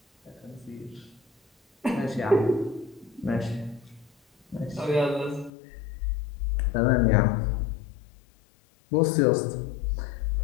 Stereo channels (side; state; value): right; drops out; at 5.5 s